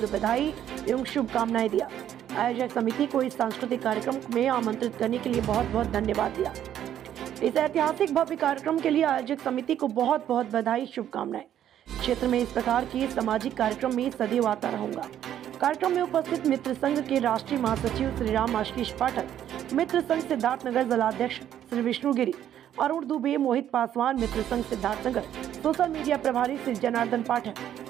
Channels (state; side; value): quieter; left; 10.7 dB